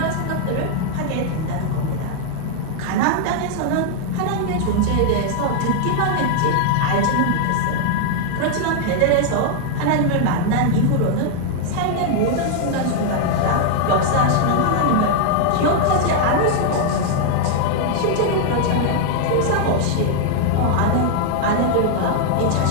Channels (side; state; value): both; different; correlation 0.00